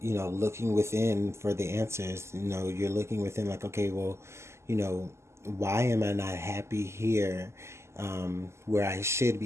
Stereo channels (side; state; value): left; late; 0.13 ms